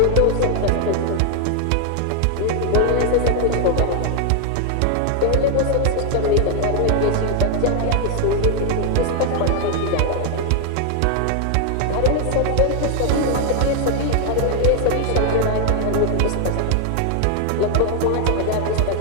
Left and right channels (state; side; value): different; both; correlation 0.00